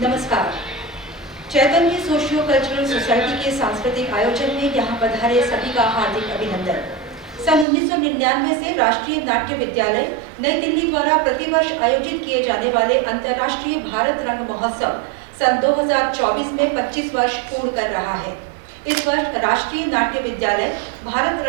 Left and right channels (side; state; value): left; drops out; at 7.7 s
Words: चैतन्य socio cultural society के सांस्कृतिक आयोजन में यहाँ पधारे सभी का हार्दिक अभिनंदन। सन 1999 से राष्ट्रीय नाट्य विद्यालय नई दिल्ली द्वारा प्रतिवर्ष आयोजित किए जाने वाले अंतर्राष्ट्रीय भारत रंग महोत्सव सन 2024 में 25 वर्ष पूर्ण कर रहा है। इस वर्ष राष्ट्रीय नाट्य विद्यालय भारत